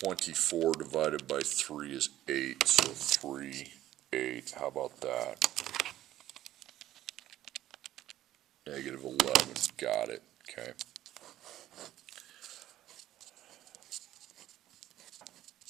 divided by 3 is 8, so 3, 8, how about that? Negative 11, got it, okay.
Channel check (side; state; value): left; quieter; 13.6 dB